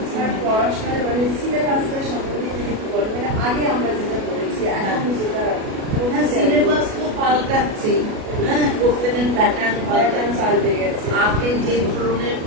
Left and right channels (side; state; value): left; late; 37 ms